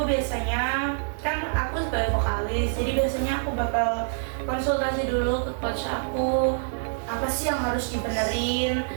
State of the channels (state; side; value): silent; left; digital silence